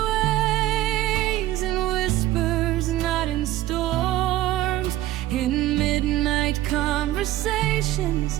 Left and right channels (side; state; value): left; quieter; 15.2 dB